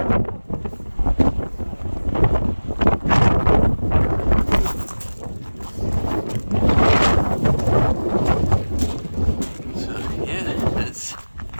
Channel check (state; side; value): inverted; both; correlation -1.00